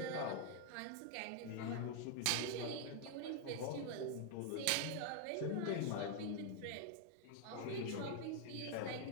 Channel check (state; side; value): different; both; correlation 0.00